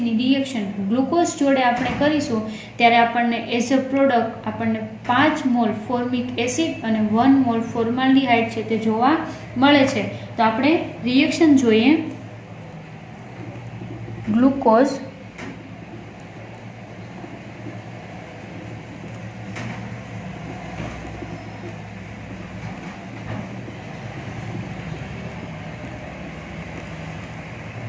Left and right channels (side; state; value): both; identical; correlation 1.00